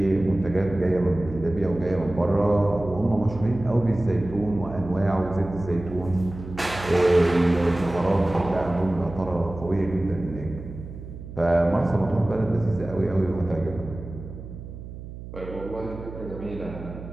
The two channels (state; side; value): noise; right; hum, 12 dB below the sound